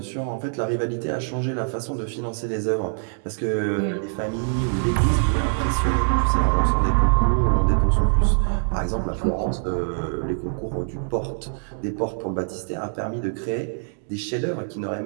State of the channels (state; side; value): silent; left; digital silence